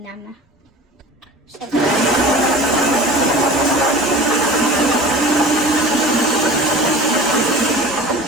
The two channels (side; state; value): both; normal; correlation 0.39